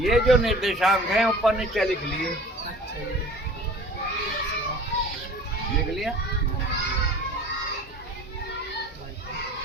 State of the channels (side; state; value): both; normal; correlation 0.44